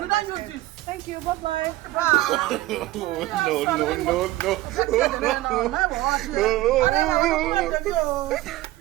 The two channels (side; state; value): left; quieter; 16.9 dB